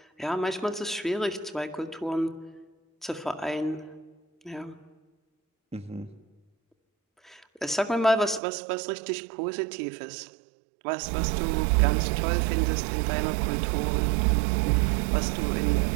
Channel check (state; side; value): drops out; left; at 8.4 s